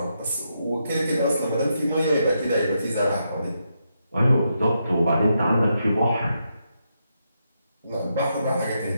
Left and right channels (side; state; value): both; inverted; correlation -0.82